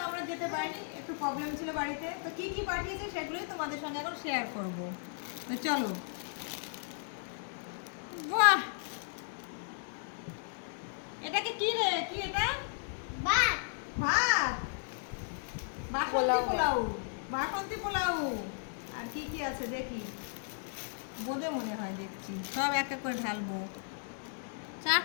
আমরা যেতে পারিনি, একটু প্রবলেম ছিল বাড়িতে। তো কি কি পাঠিয়েছে সেগুলোই তোমাদের সঙ্গে এখন শেয়ার করব। তো চলো। বাহ, এটাকে কি রে, কি এটা? ভাত। ভাত, বাসন্তী পোলাও। আর কি কি আছে দেখি, বোঁদে মনে হয়, দেখছি সব এক এক করে ঢালবো।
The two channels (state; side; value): silent; right; digital silence